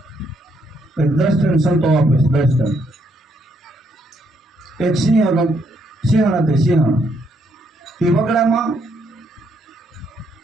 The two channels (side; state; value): both; normal; correlation 0.73